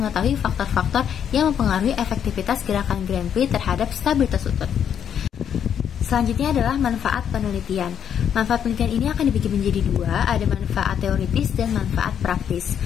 faktor-faktor yang mempengaruhi efektivitas gerakan Grand Pli terhadap stabilitas lutut. Selanjutnya adalah manfaat penelitian. Manfaat penelitian ini akan dibagi menjadi 2, ada manfaat teoritis dan manfaat praktis.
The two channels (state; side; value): quieter; right; 8.8 dB